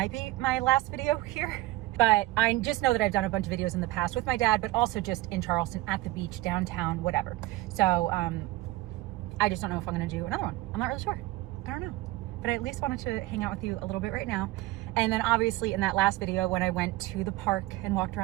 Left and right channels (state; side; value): quieter; left; 18.5 dB